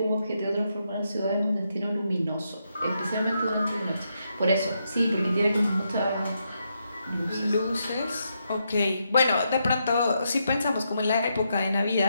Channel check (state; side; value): inverted; both; correlation -0.81